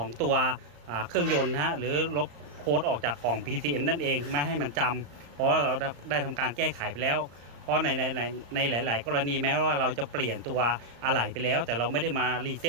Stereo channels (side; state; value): left; late; 35 ms